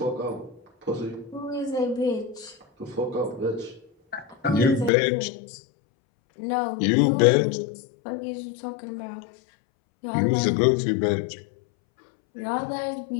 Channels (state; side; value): drops out; right; at 4.9 s